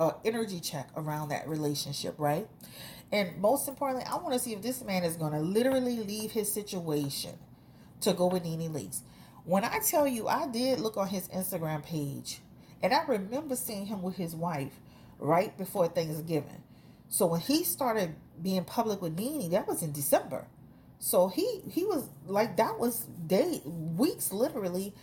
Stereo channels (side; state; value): both; identical; correlation 1.00